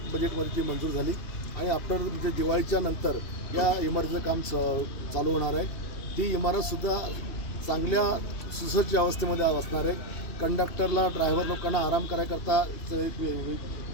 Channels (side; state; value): right; late; 2.8 ms